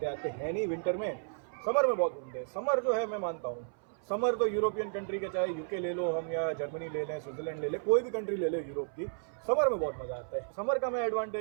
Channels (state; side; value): silent; left; 56 dB below the other